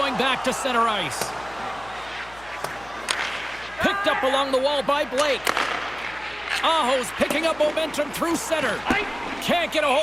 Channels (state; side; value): noise; left; hum, 22 dB below the sound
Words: back to center ice. Picked up along the wall by Blake. Aho's picking up momentum through center. Can't get a